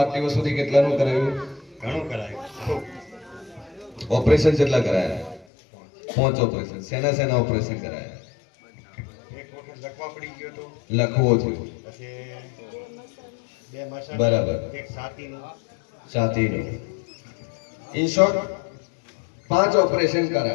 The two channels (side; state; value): right; drops out; at 5.5 s